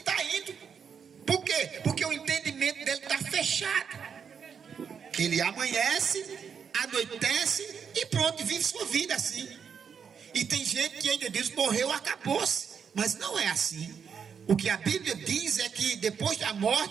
indo. Por quê? Porque o entendimento dele está fechado. Ele amanhece, anoitece e pronto, vive sua vida assim. E tem gente que ainda diz, morreu, acabou-se. Mas não é assim. O que a Bíblia diz é que depois da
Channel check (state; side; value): quieter; left; 6.9 dB